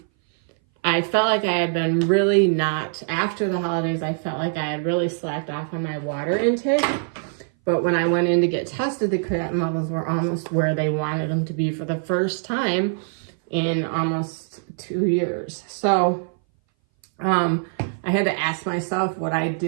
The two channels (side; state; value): left; silent; 59 dB below the other